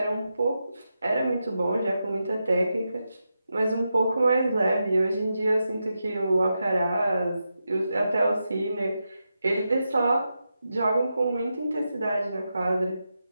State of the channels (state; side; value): inverted; both; correlation -0.88